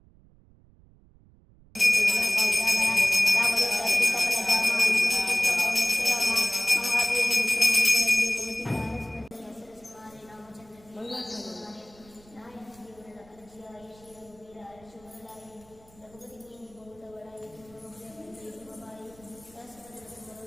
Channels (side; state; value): right; noise; rumble, 27 dB below the sound